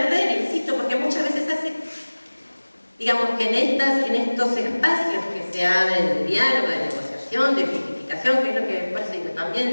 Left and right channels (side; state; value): both; inverted; correlation -1.00